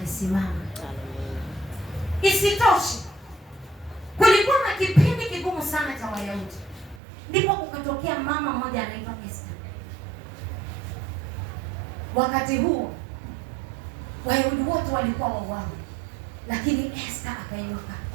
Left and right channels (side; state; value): left; drops out; at 7.0 s